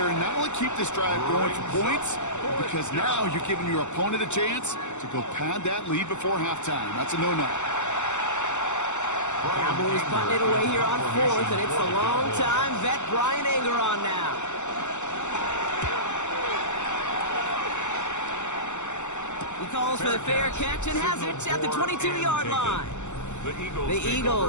and not only keep this drive going for points, because now you're giving your opponent a chance to go pad that lead before halftime. That's a no-no. Cowboys putting it away here on 4th, and it's the long-time vet Brian Anger on now. He calls for the fair catch and has it at the 22-yard line. The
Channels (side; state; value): right; late; 0.84 ms